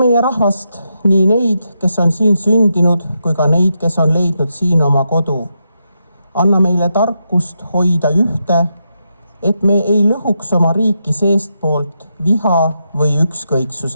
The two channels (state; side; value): inverted; both; correlation -0.84